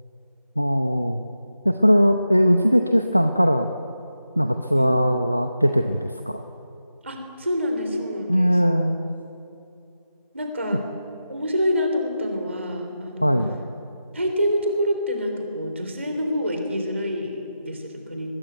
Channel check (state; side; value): inverted; both; correlation -0.90